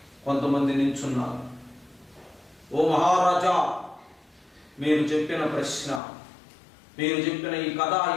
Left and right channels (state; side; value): drops out; right; at 6.0 s